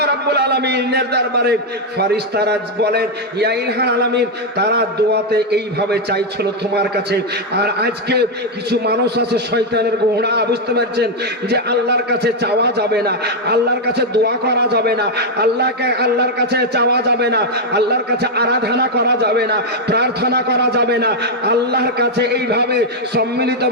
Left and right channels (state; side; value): normal; both; correlation 0.01